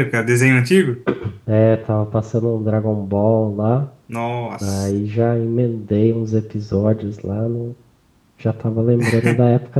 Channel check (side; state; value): both; identical; correlation 1.00